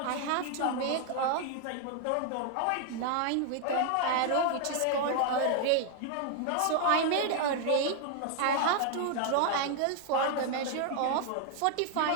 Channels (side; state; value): both; different; correlation 0.00